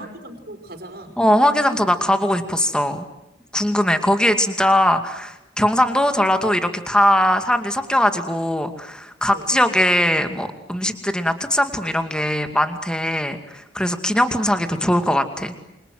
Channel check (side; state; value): both; normal; correlation 0.82